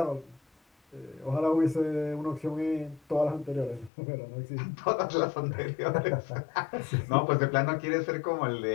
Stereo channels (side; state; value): right; drops out; at 3.9 s